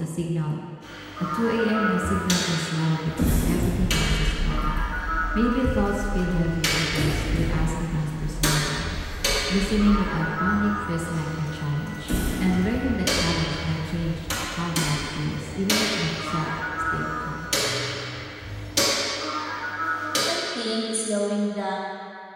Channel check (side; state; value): both; identical; correlation 1.00